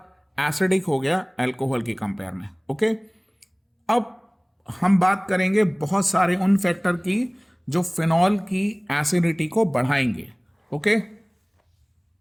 एसिडिक हो गया एल्कोहल की कंपेयर में। ओके, अब हम बात करेंगे बहुत सारे उन फैक्टर की जो फिनॉल की एसिडिटी को बढ़ाएंगे। ओके,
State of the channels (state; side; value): identical; both; correlation 1.00